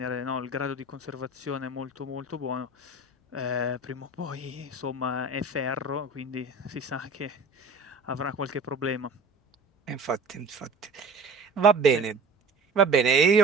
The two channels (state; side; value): quieter; left; 3.4 dB